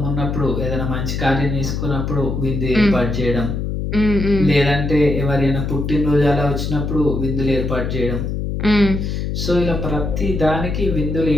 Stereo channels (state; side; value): noise; left; hum, 2 dB below the sound